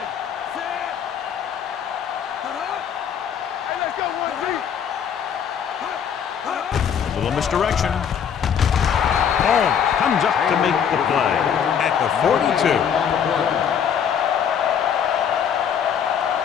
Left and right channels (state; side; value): quieter; right; 8.0 dB